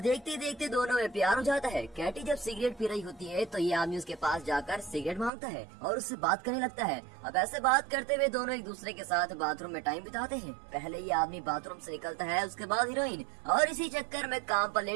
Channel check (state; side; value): drops out; left; at 5.3 s